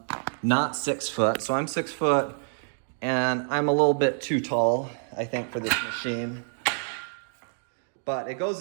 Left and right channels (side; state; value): left; silent; digital silence